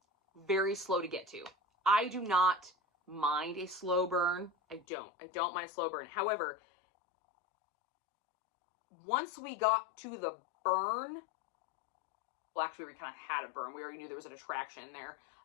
very slow to get to. I do not mind a slow burn. I don't mind a slow burn. However, once we got to the burn, well, actually, we kind of had a burn. We already knew there was an attraction there.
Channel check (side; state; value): right; drops out; at 4.9 s